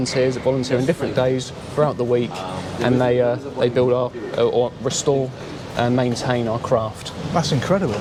that volunteer on different days throughout the week, and they build or restore and maintain our craft. That's incredible.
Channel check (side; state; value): both; identical; correlation 1.00